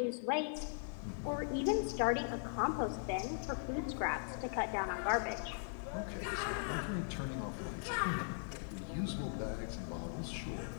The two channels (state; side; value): silent; right; 51 dB below the other